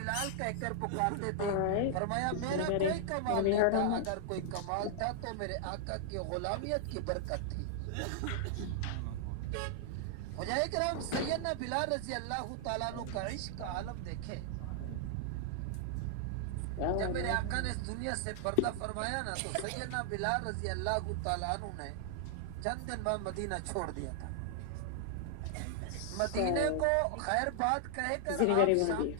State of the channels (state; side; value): different; both; correlation 0.00